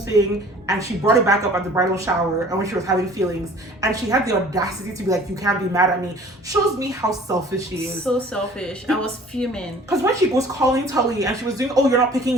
and she brought it back up at the bridal shower and when she was having feelings and she had the audacity to be like, you can't be mad at me, shows me how selfish she is. So selfish. I was fuming. Because when she was calling Tully and she was doing, oh, you're not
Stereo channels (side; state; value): both; normal; correlation 0.50